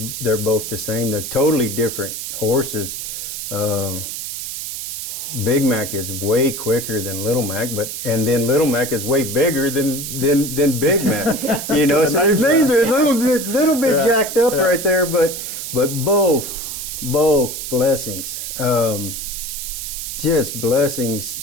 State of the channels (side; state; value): right; noise; hiss, 6 dB below the sound